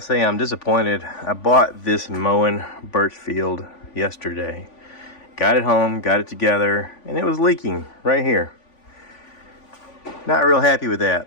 I'm disappointed. I bought this Moen Birchfield yesterday. Got it home, got it together, and it was leaking right here. Not real happy with that.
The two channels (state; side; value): late; right; 3.5 ms